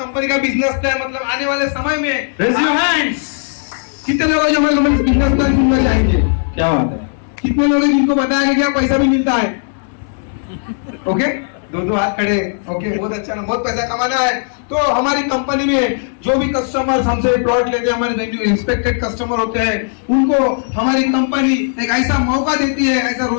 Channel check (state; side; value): silent; right; digital silence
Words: का बिजनेस प्लान, मतलब आने वाले समय में कितने लोग हैं जो हमारे कंपनी का बिजनेस प्लान सुनना चाहेंगे? क्या बात है, कितने लोग हैं जिनको पता है कि क्या पैसा भी मिलता है? ओके, दो हाथ खड़े। ओके, बहुत अच्छा ना, बहुत पैसा कमाना है। तो हमारी कंपनी में जो भी कस्टमर्स हमसे प्रोडक्ट लेके, हमारे जो इंस्पेक्टेड कस्टमर होते हैं, उनको हमारी कंपनी एक ऐसा मौका देती है, ऐसा